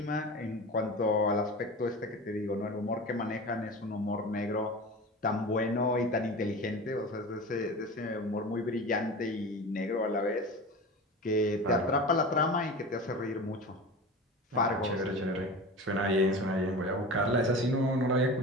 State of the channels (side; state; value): both; normal; correlation 0.32